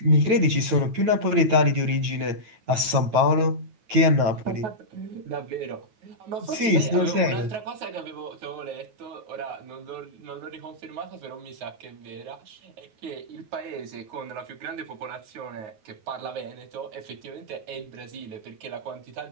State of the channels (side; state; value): left; late; 9.3 ms